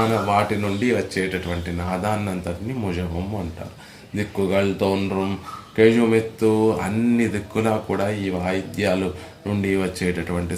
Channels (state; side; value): identical; both; correlation 1.00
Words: వాటి నుండి వచ్చేటటువంటి నాదాన్నంతటిని ముజవం అంటారు. దిక్కుగల్ తోన్రం కేజుమెత్తు, అన్ని దిక్కులా కూడా ఈ వాయిద్యాలు నుండి వచ్చేటటువంటి